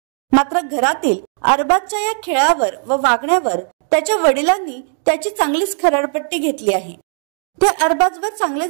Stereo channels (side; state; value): left; silent; digital silence